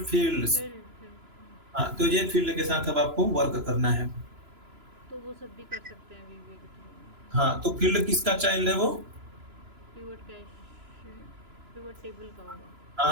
फील्ड्स। Field field. हाँ, तो ये फील्ड के साथ अब आपको वर्क करना है। तो वो सब भी कर सकते हैं वीवीए के थ्रू। हाँ, तो फील्ड किसका चाइल्ड है वो? पिवट कैश, पिवट टेबल का होगा।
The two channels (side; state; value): left; late; 3.0 ms